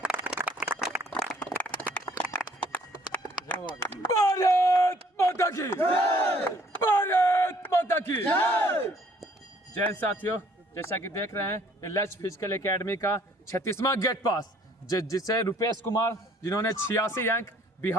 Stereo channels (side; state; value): both; normal; correlation 0.60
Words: भारत माता की जय, भारत माता की जय। जय साथियों, जैसा कि देख रहे हैं ये लक्ष्य फिजिकल एकेडमी का 36वां गेट पास जिसे रुपेश कुमार जिन्होंने 86 अंक